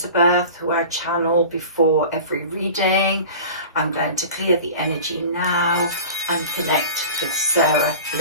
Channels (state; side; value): inverted; both; correlation -0.38